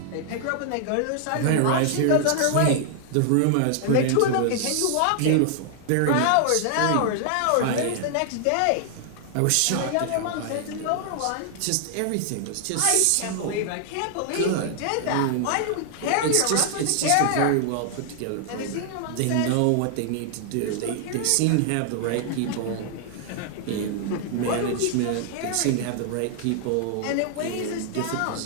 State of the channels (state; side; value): different; both; correlation 0.00